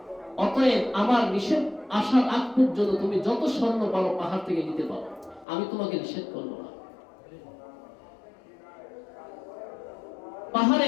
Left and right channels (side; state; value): right; drops out; at 5.5 s